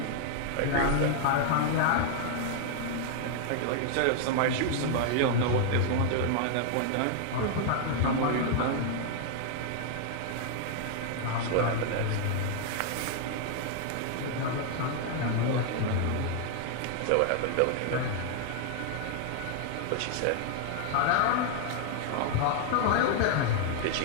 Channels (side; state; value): both; different; correlation 0.00